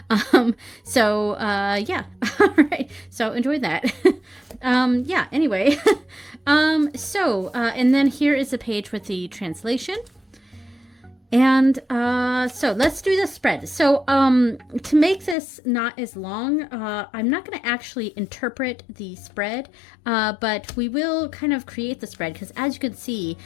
so yeah. All right, so enjoy that. Yeah, anyway. And then here is a page with the translation. And so let's do the spread. So to make this not as long, I'm not going to actually interpret the spread, but we will kind of create the spread, because as you can see,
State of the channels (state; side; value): drops out; right; at 15.4 s